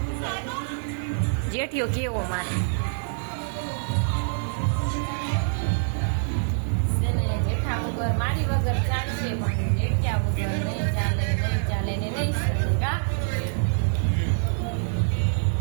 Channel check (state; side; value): silent; left; digital silence